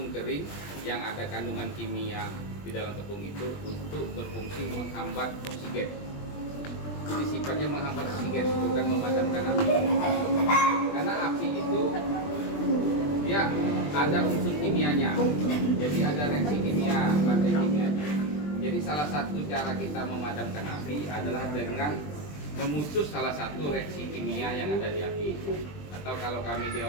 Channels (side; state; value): right; late; 20 ms